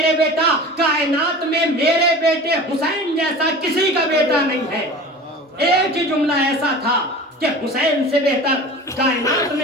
بیٹا کائنات میں میرے بیٹے حسین جیسا کسی کا بیٹا نہیں ہے. ایک ہی جملہ ایسا تھا کہ حسین سے بہتر کائنات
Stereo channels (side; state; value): both; normal; correlation 0.37